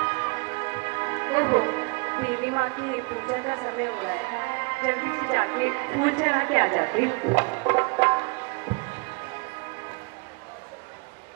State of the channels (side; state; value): left; quieter; 31.0 dB